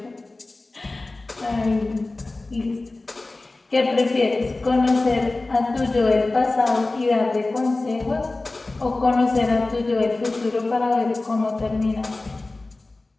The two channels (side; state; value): right; quieter; 3.1 dB